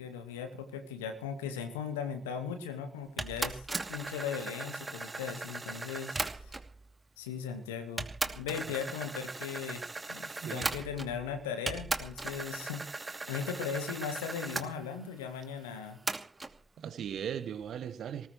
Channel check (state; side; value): normal; both; correlation 0.49